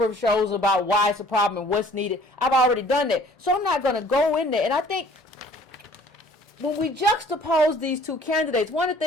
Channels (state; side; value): normal; both; correlation 0.54